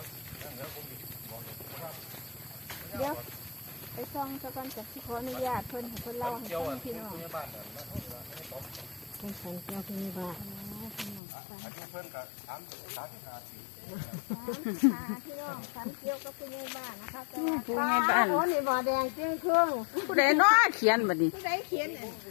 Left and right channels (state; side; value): drops out; right; at 11.2 s